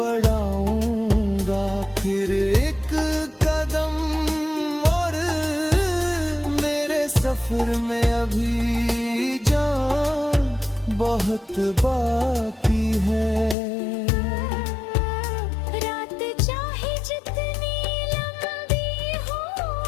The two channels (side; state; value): right; drops out; at 13.6 s